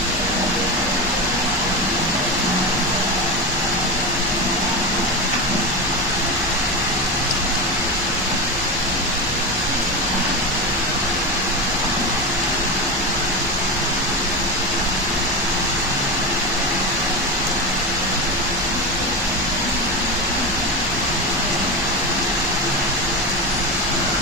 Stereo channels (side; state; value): both; normal; correlation 0.19